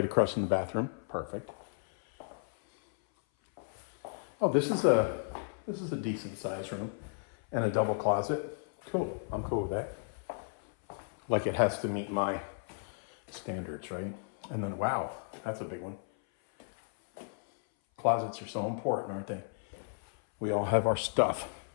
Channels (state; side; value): silent; right; 55 dB below the other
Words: across from the bathroom. Perfect. Oh, this is a decent size room and a double closet. Cool. I'm cool with that. Like it has to meet my standards, right? And then, wow, that's a big one. Closets are so important, aren't they? We all have our stuff.